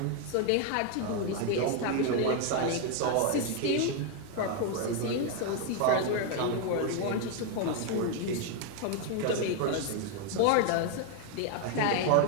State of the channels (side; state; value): both; different; correlation 0.01